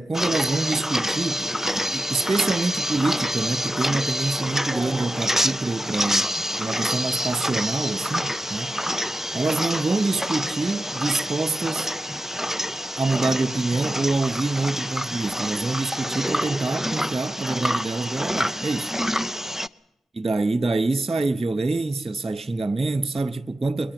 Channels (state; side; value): normal; both; correlation 0.91